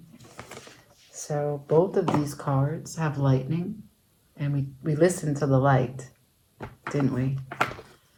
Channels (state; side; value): identical; both; correlation 1.00